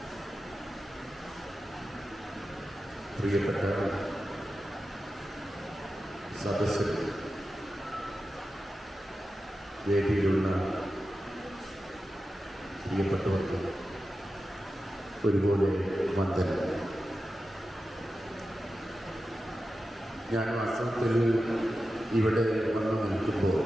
പ്രിയപ്പെട്ട സദസ്സിൽ വേദിയിലുള്ള പ്രിയപ്പെട്ടവർക്ക് ഒരുപോലെ വന്ദനം. ഞാൻ വാസ്തവത്തിൽ ഇവിടെ വന്നു നിൽക്കുമ്പോൾ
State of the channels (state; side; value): normal; both; correlation 0.92